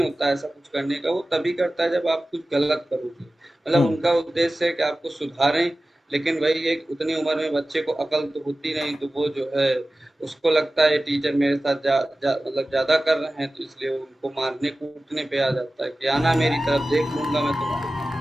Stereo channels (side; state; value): both; normal; correlation 0.96